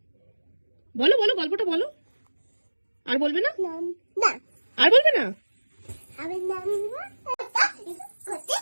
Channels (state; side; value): inverted; both; correlation -1.00